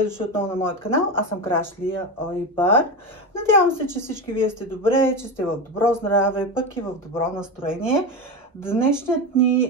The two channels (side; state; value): both; normal; correlation 0.19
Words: дошли отново на моят канал. Аз съм Краш Лия Ойбар. Надявам се, че всички вие сте добре, че сте в добро здраве, пък и в добро настроение. Днешният